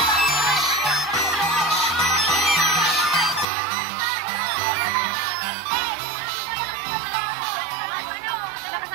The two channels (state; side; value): drops out; left; at 3.5 s